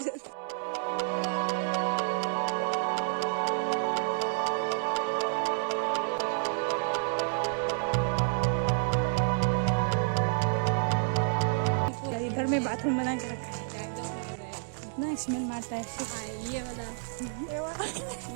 जरूर। इधर में बाथरूम बना के रखा है ना, स्मेल मारता है। ये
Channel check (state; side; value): silent; left; digital silence